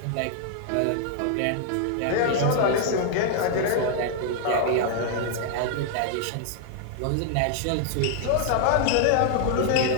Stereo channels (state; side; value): different; both; correlation -0.01